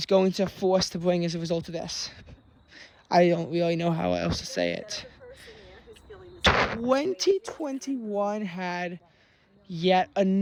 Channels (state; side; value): identical; both; correlation 1.00